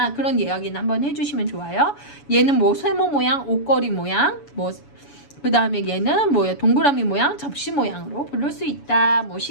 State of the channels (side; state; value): right; late; 7.0 ms